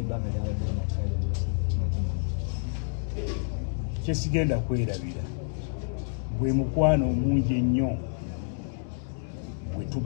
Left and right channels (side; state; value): right; silent; digital silence